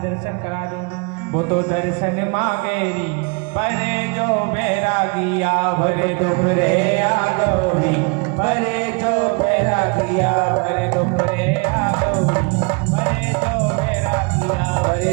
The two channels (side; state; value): left; quieter; 32.2 dB